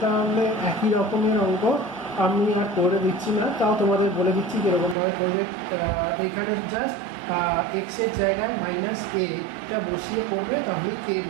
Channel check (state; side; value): drops out; left; at 5.0 s